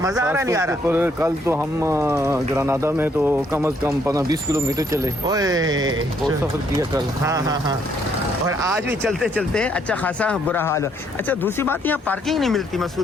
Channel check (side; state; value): both; normal; correlation 0.69